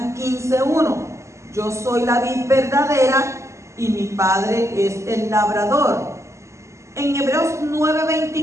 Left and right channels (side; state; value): left; late; 0.14 ms